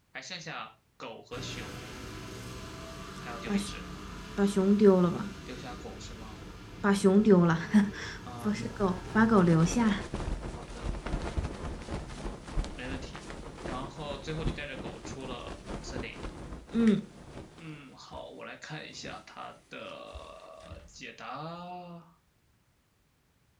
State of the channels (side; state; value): both; identical; correlation 1.00